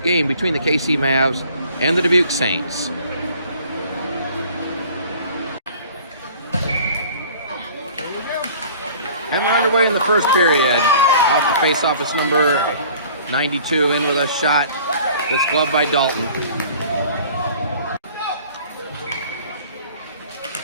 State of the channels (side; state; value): both; inverted; correlation -0.50